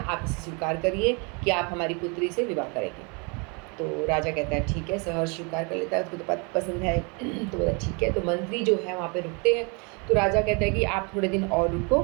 आप इसे स्वीकार करिए कि आप हमारी पुत्री से विवाह करेंगे। तो राजा कहता है ठीक है, सहर्ष स्वीकार कर लेता है, उसको तो पसंद है। तो बोला ठीक है। तो मंत्री जो है वहाँ पे रुकते हैं। तो राजा कहता है कि आप थोड़े दिन और रुको,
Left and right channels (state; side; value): quieter; left; 32.3 dB